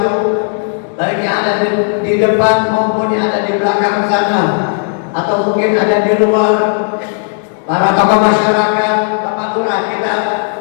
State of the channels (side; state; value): right; silent; digital silence